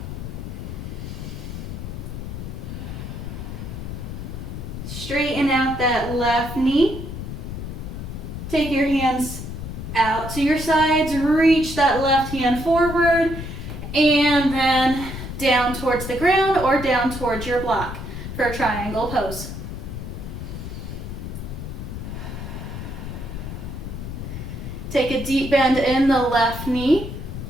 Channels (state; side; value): noise; left; rumble, 7 dB below the sound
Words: Straighten out that left knee. Take your hands out to your sides, reach that left hand forward, and then down towards the ground or down towards your block for a triangle pose. Take a deep bend in the left knee.